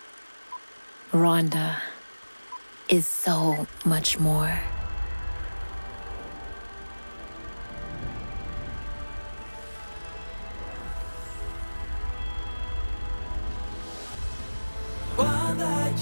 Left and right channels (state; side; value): inverted; both; correlation -1.00